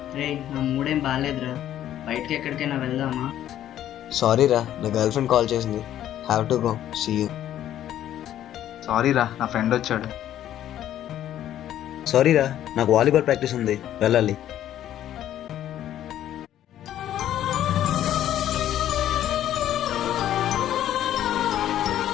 రే, నా మూడేం బాగాలేదురా. బయటికి ఎక్కడికైనా వెళ్దామా? సారీ రా, నా గర్ల్ ఫ్రెండ్ కాల్ చేసింది. Have to go. See you. Sorry రా, నా ఫ్రెండ్ వచ్చాడు. సారీ రా, నాకు వాలీబాల్ ప్రాక్టీస్ ఉంది, వెళ్ళాలి.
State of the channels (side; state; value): right; quieter; 11.7 dB